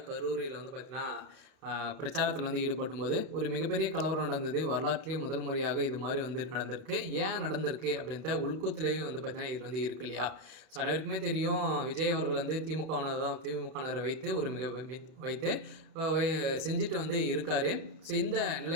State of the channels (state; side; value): late; left; 31 ms